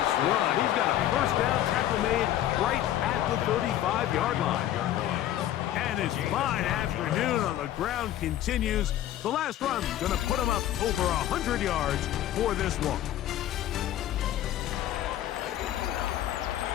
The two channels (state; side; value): quieter; right; 12.6 dB